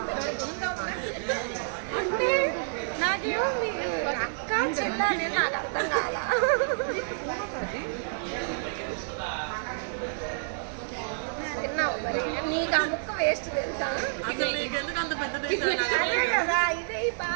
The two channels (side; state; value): left; silent; digital silence